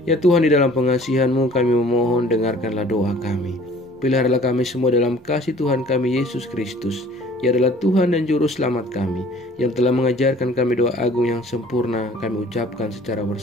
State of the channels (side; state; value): both; normal; correlation 0.52